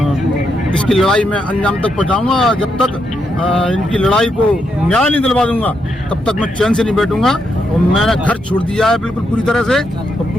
इसकी लड़ाई मैं अंजाम तक पहुँचाऊँगा। जब तक इनकी लड़ाई को न्याय नहीं दिलवा दूंगा तब तक मैं चैन से नहीं बैठूंगा। और मैंने घर छोड़ दिया है बिल्कुल पूरी तरह से, और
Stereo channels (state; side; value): normal; both; correlation 0.80